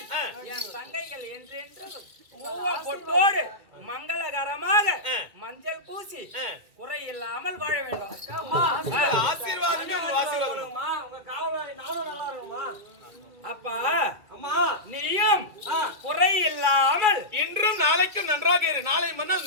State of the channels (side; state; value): left; late; 2.3 ms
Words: என் தங்கைகள் என்றென்றும் பொட்டோடு மங்களகரமாக மஞ்சள் பூசி குறை இல்லாமல் வாழ வேண்டும். அப்பா நீயும் குறை இல்லாமல் இன்றும் நாளைக்கும் நன்றாக இரு. நாளை